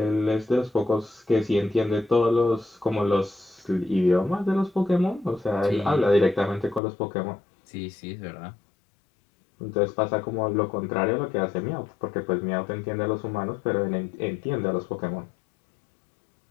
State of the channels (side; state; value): right; drops out; at 6.8 s